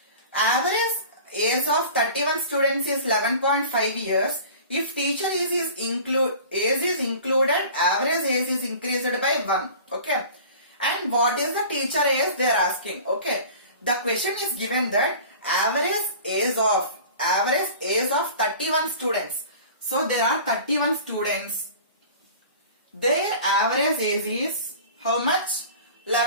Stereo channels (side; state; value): both; inverted; correlation -0.42